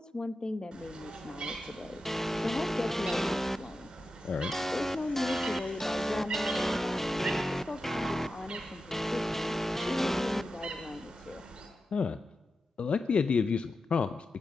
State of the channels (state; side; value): normal; both; correlation 0.91